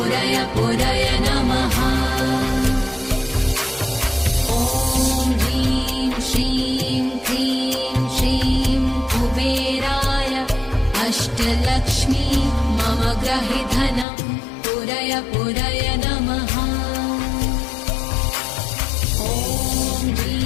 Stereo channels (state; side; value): drops out; right; at 14.1 s